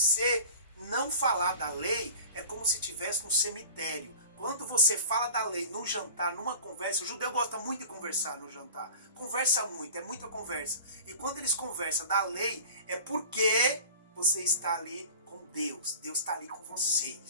não falar da lei, é como se estivesse no cemitério. Quando você fala da lei no jantar, numa conversa, o judeu gosta muito de conversar no jantar. Conversa muito, é muita conversa. E quando eles conversam da lei, é porque você está ali com Deus. Deus está ali com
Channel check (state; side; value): inverted; both; correlation -0.40